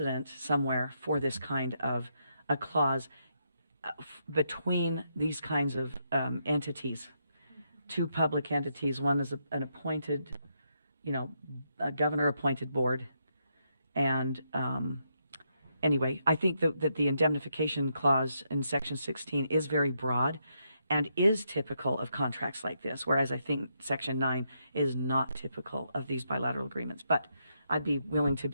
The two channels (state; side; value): inverted; both; correlation -0.79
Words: somewhere for this kind of a clause between these kinds of entities, two public entities. One is an appointed, a governor-appointed board, and anyway, I think that the indemnification clause in Section 16 is very broad and is typical of contracts like this, whereas I think Section 9 is not typical of these bilateral agreements. But I'd be willing to